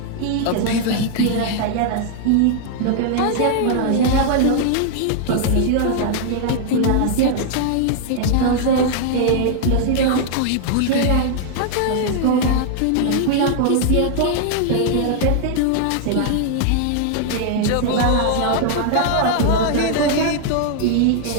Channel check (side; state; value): both; different; correlation 0.00